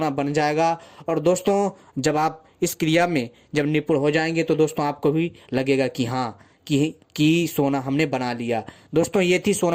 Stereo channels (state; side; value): identical; both; correlation 1.00